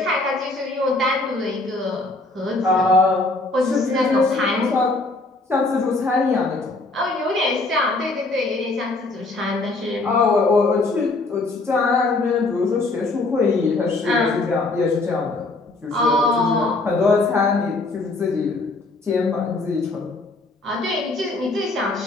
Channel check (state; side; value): quieter; right; 3.2 dB